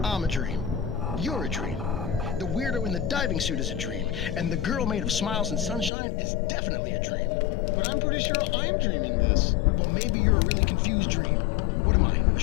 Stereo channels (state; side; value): drops out; right; at 5.9 s